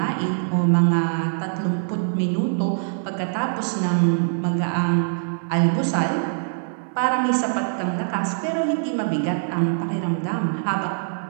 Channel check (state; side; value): silent; left; 63 dB below the other